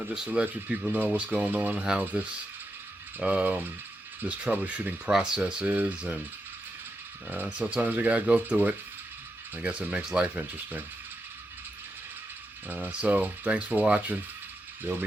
just to let you people know what's going on, how this this troubleshooting process is, and sometimes you gotta go through it. I guess it makes life interesting. So thanks for watching. There'll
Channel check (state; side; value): normal; both; correlation 0.86